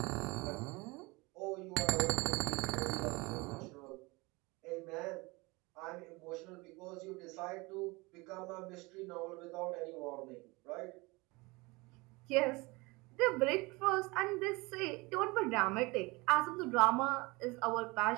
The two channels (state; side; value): quieter; left; 24.5 dB